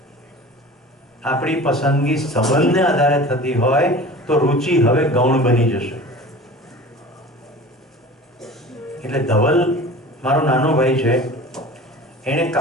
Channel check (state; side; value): normal; both; correlation 0.39